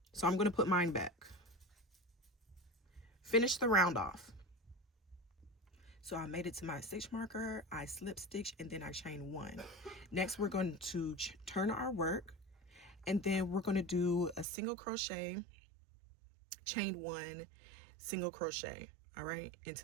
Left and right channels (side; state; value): left; drops out; at 14.5 s